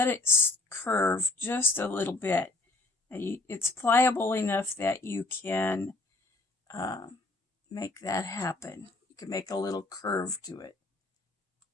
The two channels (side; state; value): right; quieter; 3.1 dB